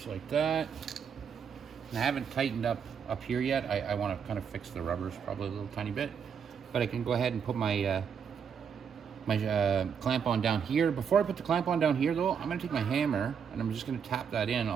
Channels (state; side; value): quieter; left; 7.1 dB